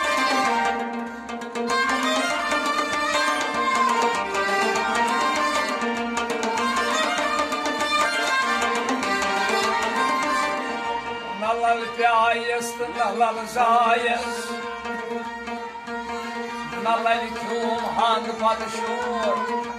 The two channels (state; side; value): identical; both; correlation 1.00